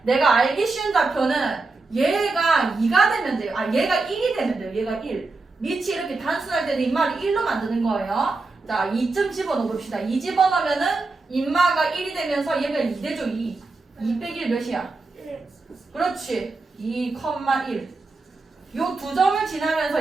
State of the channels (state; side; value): quieter; left; 3.7 dB